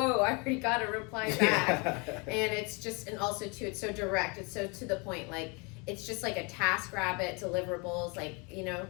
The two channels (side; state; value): right; quieter; 30.7 dB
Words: I already got a reply back. And it's just, and also too, it's so direct, it's so to the point, like, it's just like a task rabbit, deliverables, like,